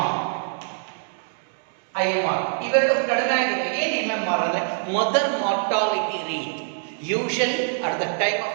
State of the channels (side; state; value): left; silent; digital silence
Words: ಇವೆರಡು ಕಡಿಮೆ ಆಗಿದೆ. ಏನು MMR ಅಂದ್ರೆ mother mortality rate. Usually at the time